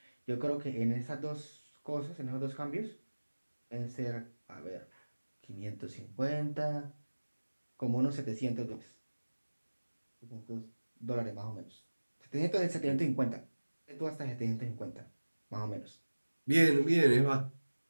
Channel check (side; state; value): both; inverted; correlation -1.00